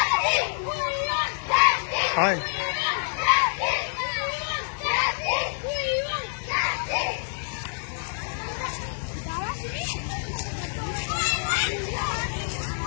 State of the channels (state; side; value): silent; right; digital silence